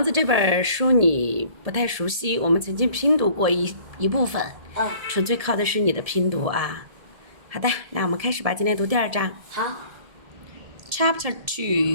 子》这本书你不太熟悉，我们曾经拼读过一部分，纯粹靠的是你的拼读啊。好的，那我们开始吧，今天读第2章。好。Chapter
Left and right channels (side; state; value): left; late; 1.7 ms